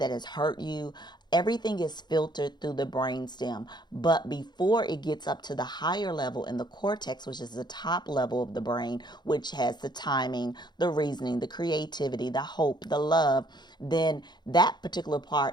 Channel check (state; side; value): late; right; 0.21 ms